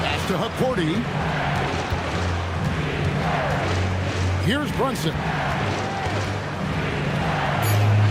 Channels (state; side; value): identical; both; correlation 1.00